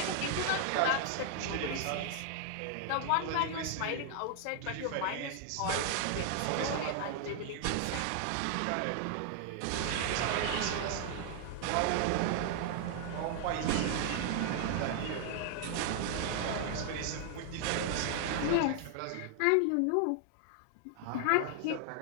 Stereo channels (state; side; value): different; both; correlation 0.00